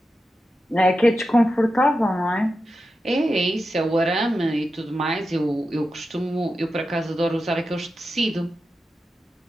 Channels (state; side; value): normal; both; correlation 0.90